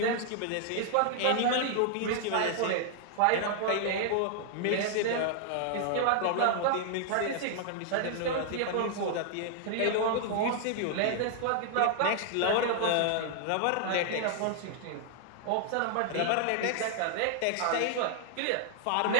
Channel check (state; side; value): different; both; correlation 0.00